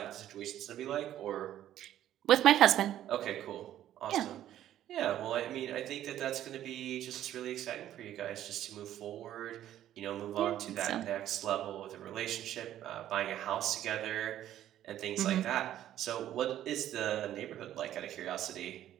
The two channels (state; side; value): quieter; left; 12.1 dB